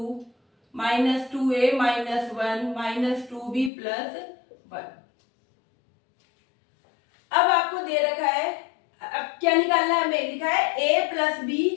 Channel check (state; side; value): drops out; right; at 3.7 s